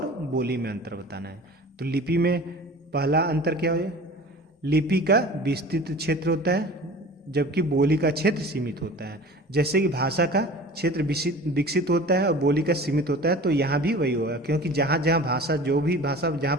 बोली में अंतर बताना है। तो लिपि में पहला अंतर क्या है, लिपि का विस्तृत क्षेत्र होता है, जबकि बोली का क्षेत्र सीमित होता है। जैसे कि भाषा का क्षेत्र विकसित होता है और बोली का सीमित होता है, तो यहाँ भी वही होगा, क्योंकि जहाँ जहाँ भाषा, जो भी भाषा जहाँ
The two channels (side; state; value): both; normal; correlation 0.40